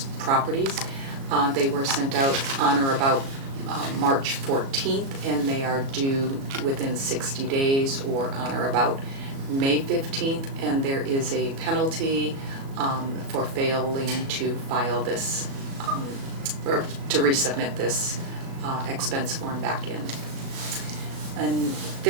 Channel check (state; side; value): late; left; 37 ms